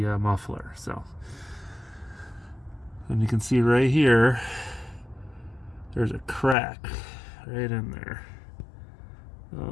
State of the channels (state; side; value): drops out; right; at 6.6 s